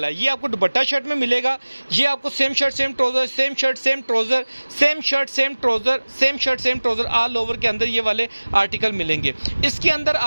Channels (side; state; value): both; inverted; correlation -1.00